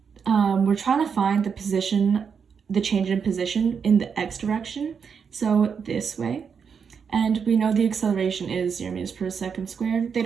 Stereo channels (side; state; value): left; quieter; 6.5 dB